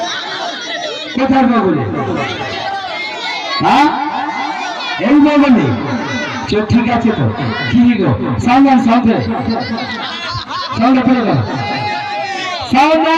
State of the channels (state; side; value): identical; both; correlation 1.00